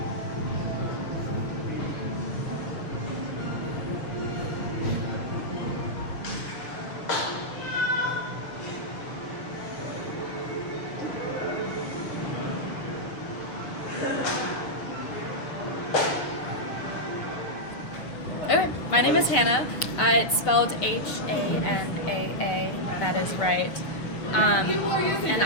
Okay, my name is Hannah. It's spelled Hanaa. That is right. And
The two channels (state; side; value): late; right; 6.4 ms